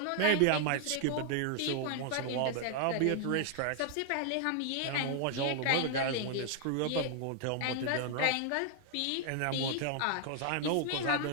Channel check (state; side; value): different; both; correlation 0.00